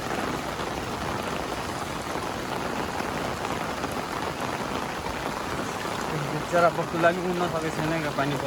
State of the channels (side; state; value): both; identical; correlation 1.00